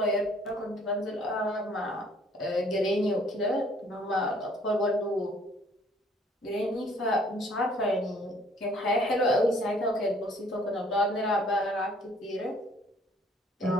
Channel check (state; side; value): normal; both; correlation 0.59